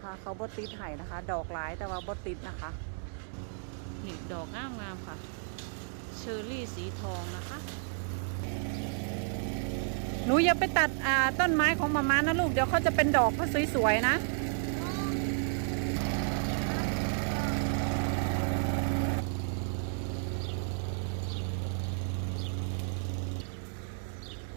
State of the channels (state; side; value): silent; left; 56 dB below the other